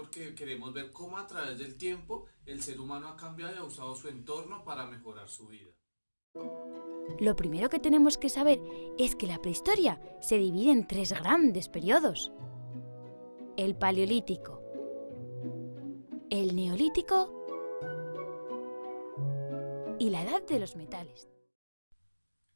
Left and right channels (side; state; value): both; inverted; correlation -1.00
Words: queremos ver cómo a través del tiempo el ser humano ha cambiado y ha usado su entorno para mejorar su vida. Lo primero que tenemos que saber es que la prehistoria se divide en tres grandes periodos: el paleolítico, el neolítico y la edad de los metales.